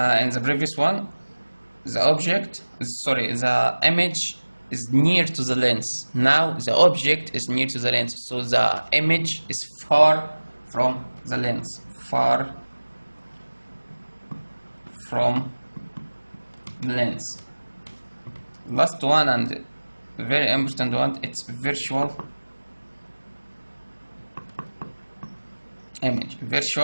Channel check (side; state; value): both; inverted; correlation -1.00